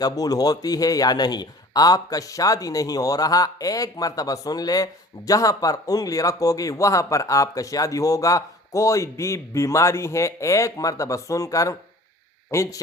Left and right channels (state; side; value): normal; both; correlation 0.46